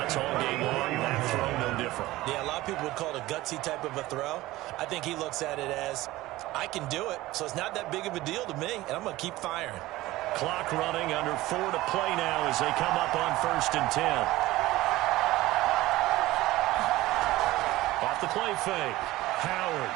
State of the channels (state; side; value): quieter; left; 17.7 dB